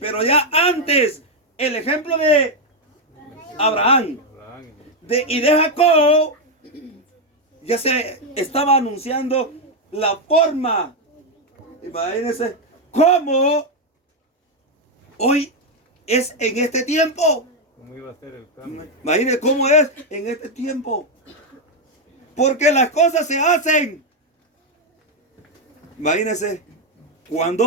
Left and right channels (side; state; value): both; normal; correlation 0.03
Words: ya antes, el ejemplo de Abraham y de Jacob, ya se estaba anunciando la forma. Imagínense cómo hoy es en este tiempo. ¿Cómo iba a ser el cambio? Imagínense cómo es en este tiempo. Porque las cosas se hacen. Imagínense